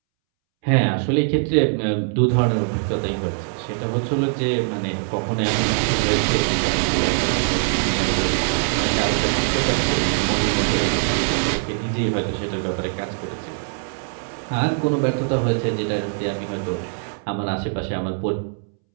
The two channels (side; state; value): left; silent; 64 dB below the other